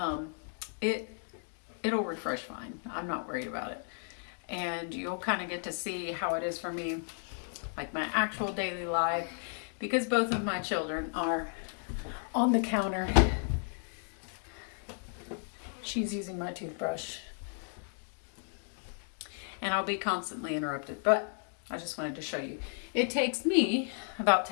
It'll refresh fine. I'm not worried about it. And you'll kind of get to see how it is for me, like my actual daily life, because both of my children are on the counter. She's using my toothbrush. And I'll be constantly interrupted, but I just wanted to show you. It takes me about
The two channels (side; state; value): right; silent; 55 dB below the other